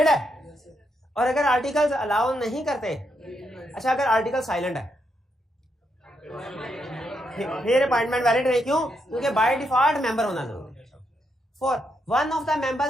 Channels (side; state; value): both; normal; correlation 0.80